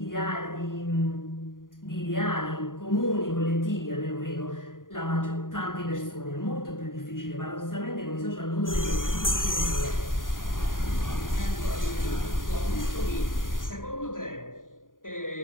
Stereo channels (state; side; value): late; right; 0.89 ms